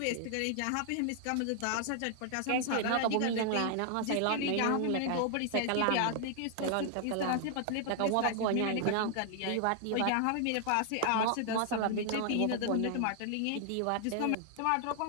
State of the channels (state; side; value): different; both; correlation 0.00